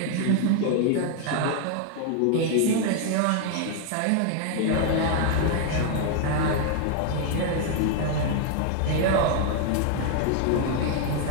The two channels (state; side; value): different; both; correlation 0.00